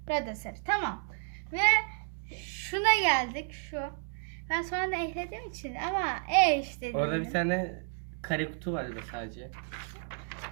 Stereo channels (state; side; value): silent; left; 57 dB below the other